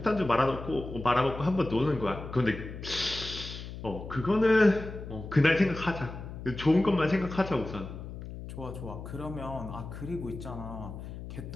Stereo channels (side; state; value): left; noise; hum, 10 dB below the sound